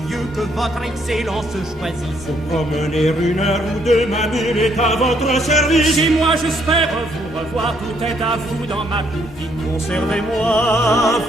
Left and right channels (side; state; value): both; normal; correlation 0.70